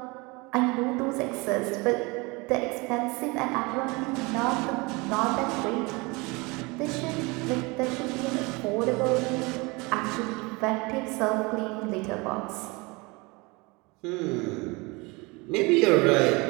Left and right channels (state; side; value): quieter; left; 26.0 dB